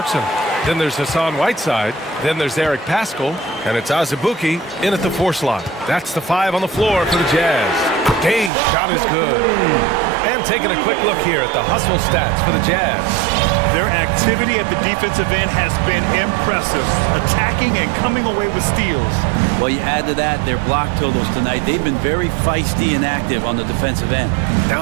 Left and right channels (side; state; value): left; drops out; at 8.5 s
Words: Then there's Hassan Whiteside. Then there's Eric Pascal. And it's Azubuike in at the 4 slot. That's the 5 on the floor for the Jazz. Gay's shot is good. And taking a quick look here at the hustle stats for the Jazz. Their activity at the defensive end has been impressive. Attacking and coming away with steals. Well, you add to that their block totals tonight. They've been very feisty and active on the defensive end.